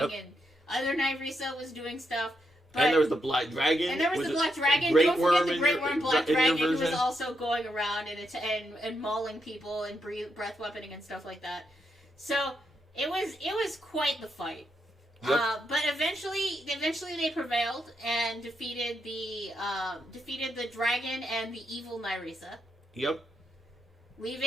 other Nyrisa was doing stuff. And there was the Black Dragon. And there was the Black Dragon. Don't forget the Great Worm Black Dragon, who was also going around and mauling people and breath weaponing and stuff like that. So it was quite the fight. Yep. But eventually they prevailed and defeated the dragon and the evil Nyrisa. Yep.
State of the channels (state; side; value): normal; both; correlation 0.82